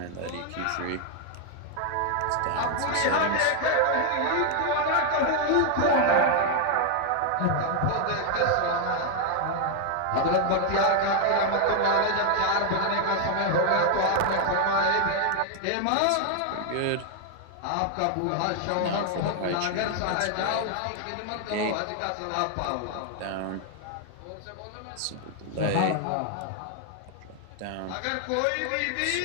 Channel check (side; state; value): both; different; correlation 0.00